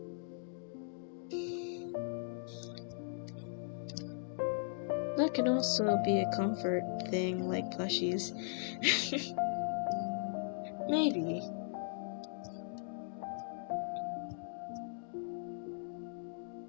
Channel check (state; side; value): silent; right; digital silence